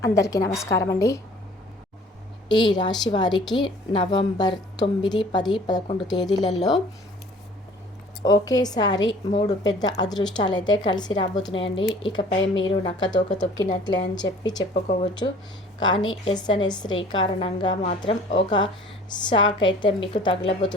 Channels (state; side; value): normal; both; correlation 0.50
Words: అందరికీ నమస్కారం అండి. ఈ రాశి వారికి నవంబర్ 9, 10, 11 తేదీలలో ఒకేసారి 3 పెద్ద అదృష్టాలు అయితే కలిసి రాబోతున్నాయండి. ఇకపై మీరు నక్కతోక తొక్కినట్లే అని చెప్పుకోవచ్చు. కానీ ఎస్ఎన్ఎస్ శ్రీ కారణంగా మాత్రం ఒక షాక్ అయితే మీకు